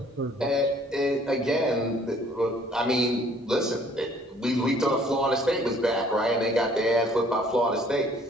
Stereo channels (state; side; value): normal; both; correlation 0.58